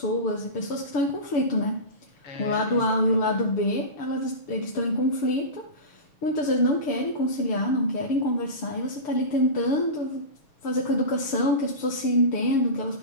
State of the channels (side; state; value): right; late; 6.8 ms